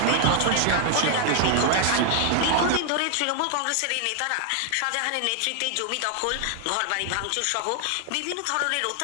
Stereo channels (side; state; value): both; different; correlation 0.00